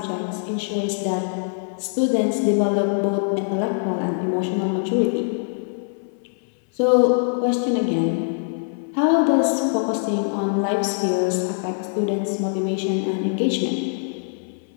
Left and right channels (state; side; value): silent; right; 58 dB below the other